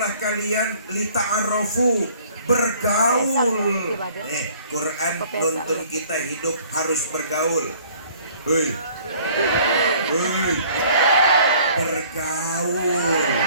kalian lita'arofu, bergaul. Quran nuntun kita hidup harus bergaul. Hei, hei, bergaul.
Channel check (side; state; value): both; inverted; correlation -0.55